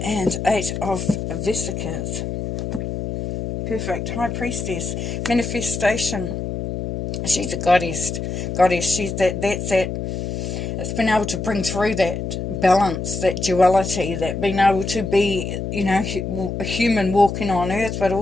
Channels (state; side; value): noise; left; hum, 4 dB below the sound